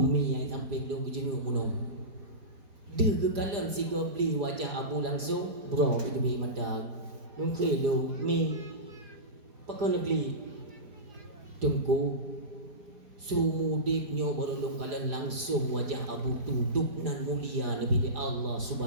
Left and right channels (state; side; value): late; left; 4.9 ms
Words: yang sampai dong kejenguk munong dia kekalan si beli wajah abu langsung bro itu bi mandang mungkin lo mi pakai negeri tunggu sumudipnya baru lo kalian langsung wajah abu duduk nan mulia lebih Allah